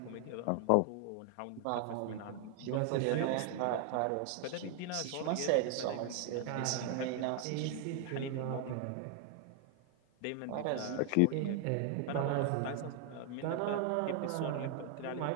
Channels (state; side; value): different; both; correlation 0.00